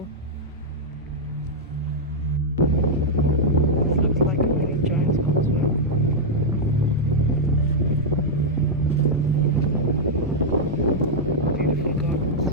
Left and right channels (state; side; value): normal; both; correlation -0.04